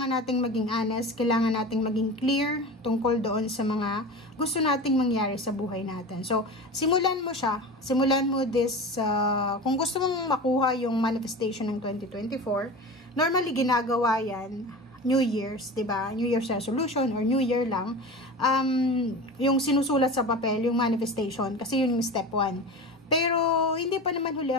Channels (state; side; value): normal; both; correlation 0.31